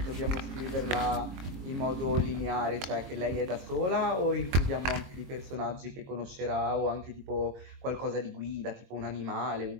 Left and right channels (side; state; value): left; late; 22 ms